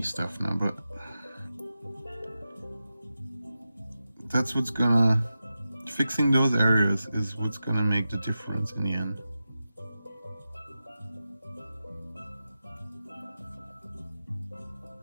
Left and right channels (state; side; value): inverted; both; correlation -0.92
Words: stuff now, but that's what's gonna, fixing those areas is what's gonna make the difference in the end.